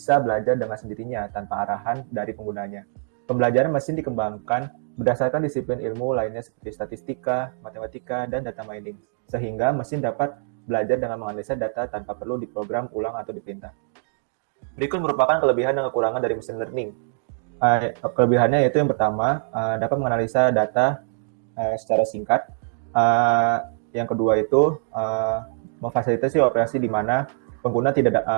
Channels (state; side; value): silent; left; digital silence